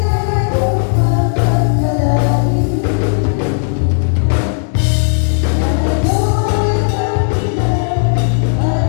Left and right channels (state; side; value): silent; right; digital silence